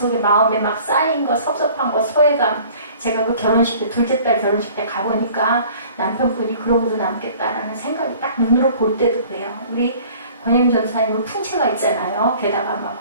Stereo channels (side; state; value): both; inverted; correlation -0.49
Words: 마음에 막 쌓인 거 섭섭한 거 소외감. 제가 그 결혼식 때 둘째 딸 결혼식 때 가보니까 남편분이 그러고도 남겠다라는 생각이 딱 눈으로 볼 때도 그래요. 우리 권혜임 전사님은 풍채가 있잖아요. 게다가